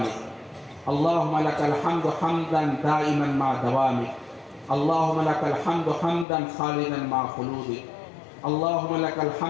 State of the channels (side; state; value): right; drops out; at 6.2 s